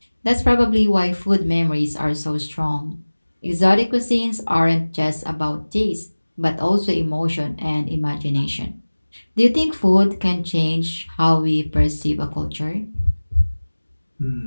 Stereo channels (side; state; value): both; inverted; correlation -1.00